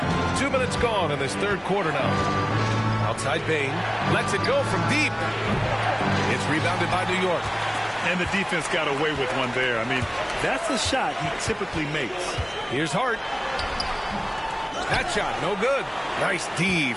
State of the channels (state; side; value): identical; both; correlation 1.00